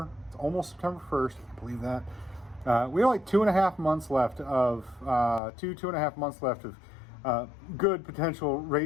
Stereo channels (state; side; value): drops out; right; at 5.4 s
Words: it's almost September 1st, I can't believe that. We have like 2.5 months left of 2.5 months left of good potential